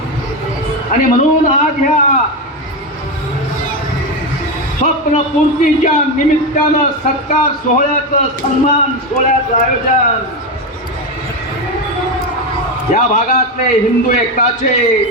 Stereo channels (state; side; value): normal; both; correlation 0.13